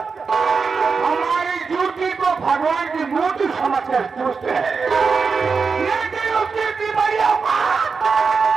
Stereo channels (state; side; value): quieter; left; 5.1 dB